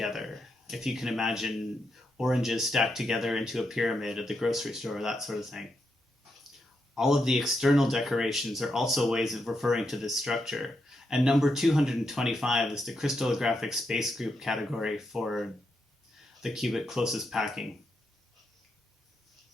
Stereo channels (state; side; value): normal; both; correlation 0.82